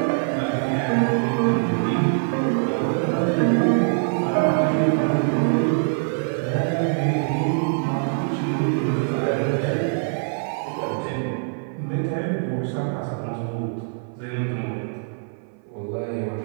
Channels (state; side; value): silent; left; 59 dB below the other